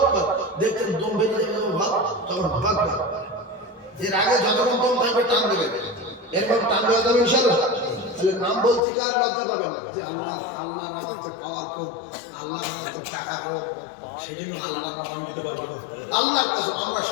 দেখেন দম বেরিয়ে যাবে ভাব তখন ভাগবে এর আগে যতক্ষণ দম থাকবে টান দেবেন এরপর টান দেওয়া যাবে ইনশাআল্লাহ তাহলে নাম বলছি কার লজ্জা পাবেন যে আল্লাহ আমাদের পাওয়ার খুব আল্লাহ আমাদের টাকা হবে সেজন্য আল্লাহ নাম দিতে পারবো না আল্লাহর কাছে আমরা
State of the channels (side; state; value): right; drops out; at 8.8 s